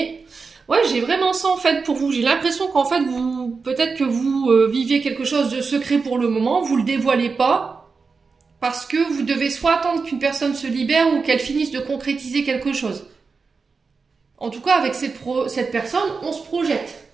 Ouais, j'ai vraiment ça en fait pour vous. J'ai l'impression qu'en fait, peut-être que vous viviez quelque chose de secret pour le moment. Vous le dévoilez pas. Parce que vous devez soit attendre qu'une personne se libère ou qu'elle finisse de concrétiser quelque chose. En tout cas, avec cette personne, on se projette.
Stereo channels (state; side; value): quieter; left; 4.7 dB